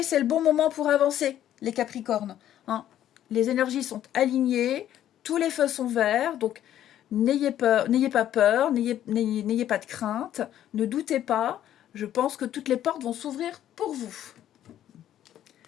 c'est le bon moment pour avancer, les capricornes. Hein. Les énergies sont alignées, tous les feux sont verts, donc n'ayez pas peur, n'ayez pas de crainte, ne doutez pas. Je pense que toutes les portes vont s'ouvrir pour vous.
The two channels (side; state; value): right; quieter; 11.5 dB